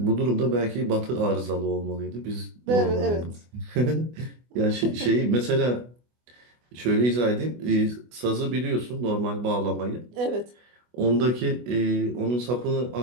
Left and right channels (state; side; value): late; left; 24 ms